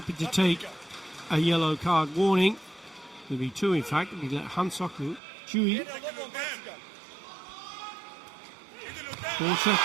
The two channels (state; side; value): drops out; left; at 5.2 s